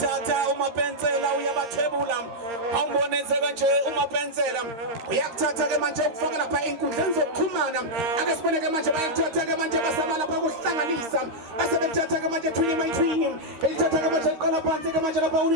umapensela uyabathebula awumbonenzeka nje umapensela uyakuthatha ke manje ukufaka lapha inkundleni zokuxhumana ake sibone ke manje bayathatha ke manje basama lapha kuhlanganisa basebethatha ke manje twini elithatha ke manje liqala phansi ke manje lapha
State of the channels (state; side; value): late; left; 13 ms